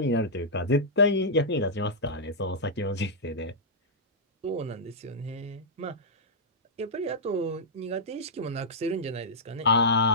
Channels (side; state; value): both; normal; correlation -0.11